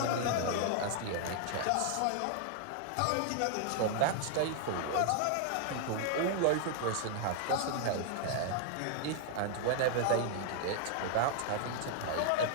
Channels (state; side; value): different; both; correlation 0.00